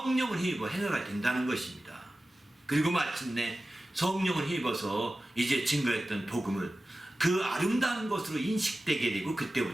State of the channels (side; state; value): both; normal; correlation 0.95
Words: 힘입어 행하가 된다는 것입니다. 그리고 마침내 성령을 힘입어서 이제 증거했던 복음을 그 아름다운 것으로 인식되게 되고,